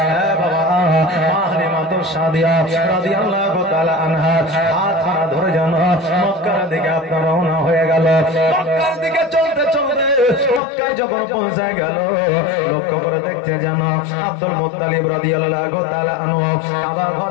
বাবা মাহরিমাতুস সাদিয়া রাদিয়াল্লাহু তাআলা আনহা হাত ধরে যেন মক্কার দিকে আপনার রওনা হয়ে গেল। মক্কার দিকে চলতে চলতে মক্কায় যখন পৌঁছে গেল, লক্ষ্য করে দেখতে যেন আব্দুল মুত্তালিব রাদিয়াল্লাহু তাআলা আনহু আমার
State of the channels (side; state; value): right; drops out; at 10.6 s